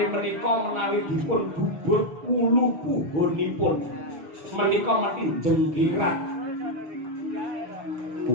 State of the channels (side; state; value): left; late; 6.3 ms